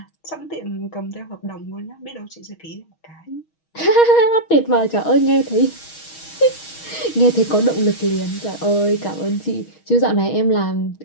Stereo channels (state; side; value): late; right; 6.3 ms